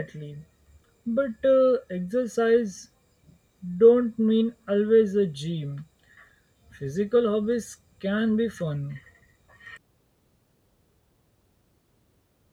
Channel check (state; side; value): identical; both; correlation 1.00